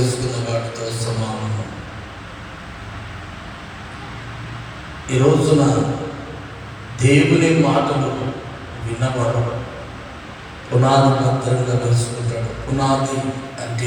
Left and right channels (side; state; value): both; identical; correlation 1.00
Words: వాడితో సమానం. ఈ రోజున దేవుని మాటలు విన్నవాడు పునాది భద్రంగా వేసుకుంటాడు. పునాది